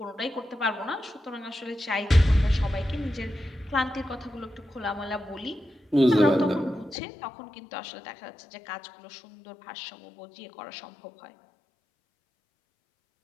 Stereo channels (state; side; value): drops out; right; at 7.0 s